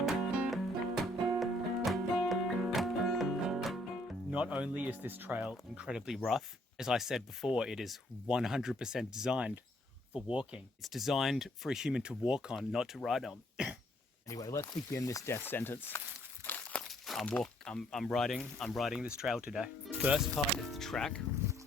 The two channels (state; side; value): normal; both; correlation 0.67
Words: Not only is this trail incredibly rough, as I said before, it is 100% designed for walking. It's designed for a human to walk on, not to ride on. Anyway, let's begin this death sentence. I'm riding this trail today. First part is the track.